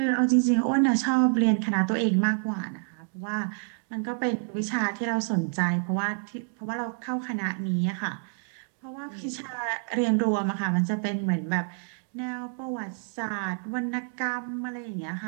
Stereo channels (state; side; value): silent; left; 56 dB below the other